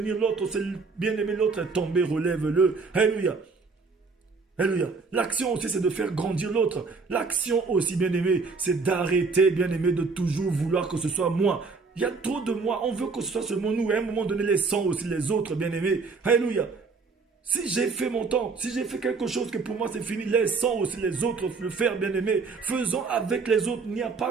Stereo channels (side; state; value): left; quieter; 4.5 dB